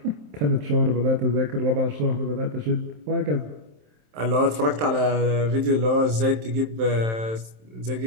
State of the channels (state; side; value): late; left; 27 ms